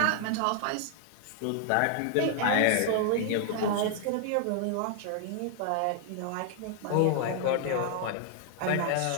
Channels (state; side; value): different; both; correlation 0.00